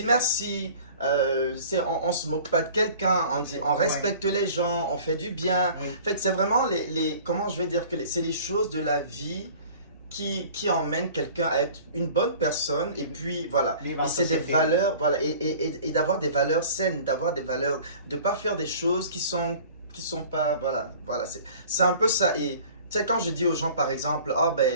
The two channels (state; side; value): inverted; both; correlation -0.46